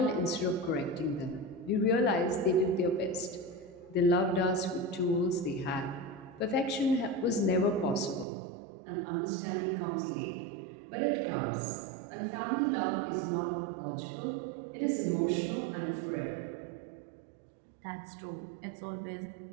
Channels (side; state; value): left; drops out; at 8.2 s